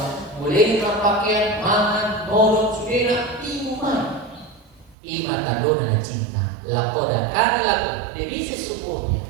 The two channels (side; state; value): left; drops out; at 5.0 s